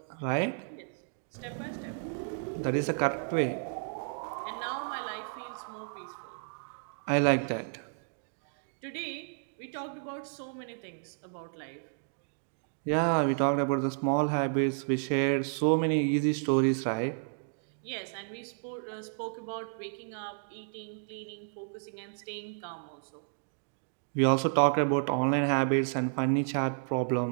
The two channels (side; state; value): left; silent; digital silence